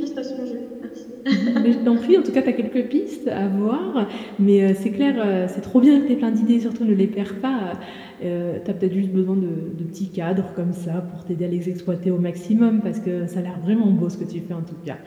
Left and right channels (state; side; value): identical; both; correlation 1.00